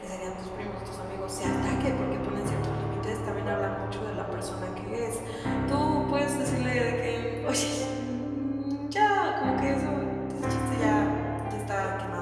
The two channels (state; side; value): identical; both; correlation 1.00